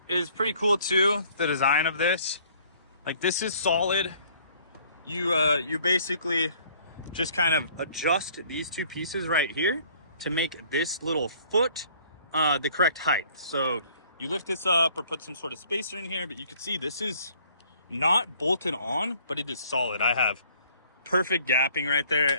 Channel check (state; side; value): inverted; both; correlation -0.58